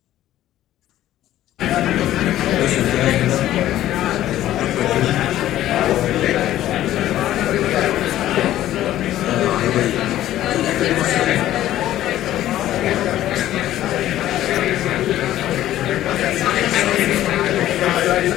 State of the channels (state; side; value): quieter; right; 13.4 dB